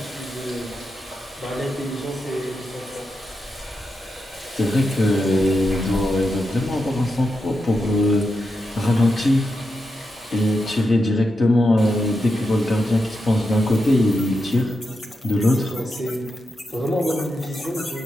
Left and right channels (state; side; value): normal; both; correlation 0.87